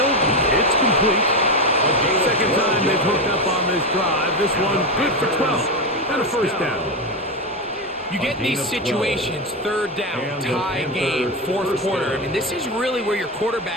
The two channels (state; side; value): normal; both; correlation 0.14